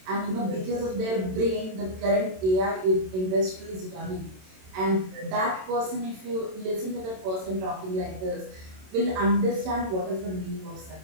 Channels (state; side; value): late; left; 27 ms